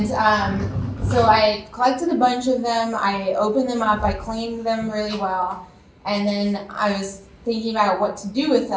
so I collected a bunch of them, I opened them up, I cleaned them really well, and then I was thinking about what to do with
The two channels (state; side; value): identical; both; correlation 1.00